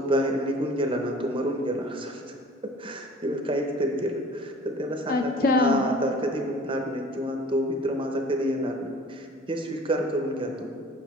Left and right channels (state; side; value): normal; both; correlation 0.47